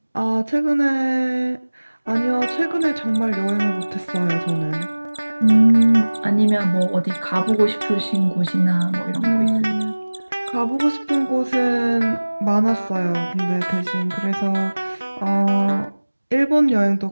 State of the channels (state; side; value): inverted; both; correlation -1.00